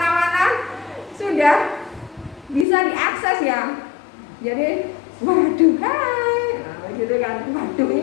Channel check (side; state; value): right; drops out; at 2.7 s